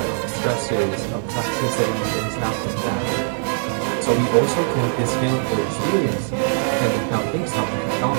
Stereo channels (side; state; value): left; silent; 60 dB below the other